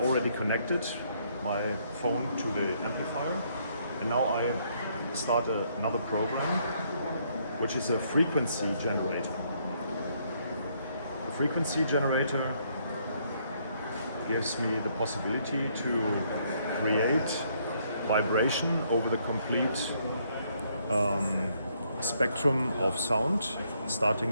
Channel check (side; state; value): both; inverted; correlation -0.70